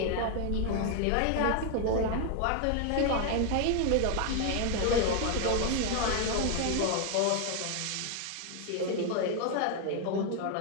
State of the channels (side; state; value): both; different; correlation 0.01